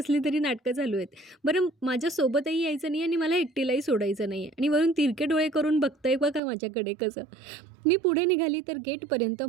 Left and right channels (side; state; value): left; drops out; at 6.4 s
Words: तरी नाटकं चालू आहेत. बरं, माझ्यासोबतही यायचं नाही आणि मला एकटीलाही सोडायचं नाही आहे, आणि वरून तिरके डोळे करून बघतंय बघा माझ्याकडे कसं. मी पुढे निघाली तर गेटपर्यंत